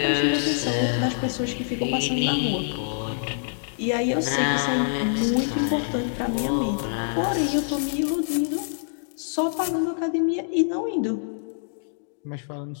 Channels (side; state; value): right; silent; digital silence